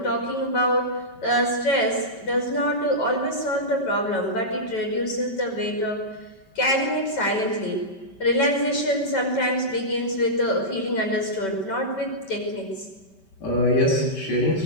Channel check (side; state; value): right; late; 5.2 ms